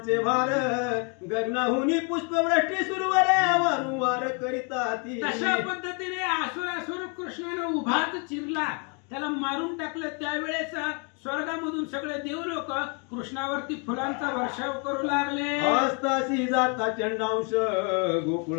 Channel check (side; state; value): right; quieter; 35.7 dB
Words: भार, गगनाहुनी पुष्पवृष्टी सुरवर, वारंवार करिता ती. तशा पद्धतीने असुरासुर कृष्णाने उभाच चिरला, त्याला मारून टाकलं. त्यावेळेस स्वर्गामधून सगळे देव लोक कृष्णावरती फुलांचा वर्षाव करू लागले. हस्तासी जाता चंडांश,